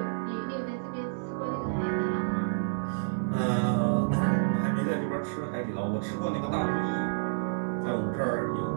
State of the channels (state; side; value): silent; left; digital silence